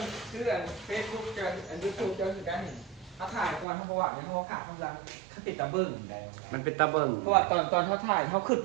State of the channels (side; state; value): left; drops out; at 3.7 s